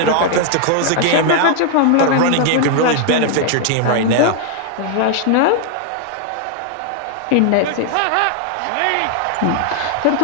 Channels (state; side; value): different; both; correlation 0.00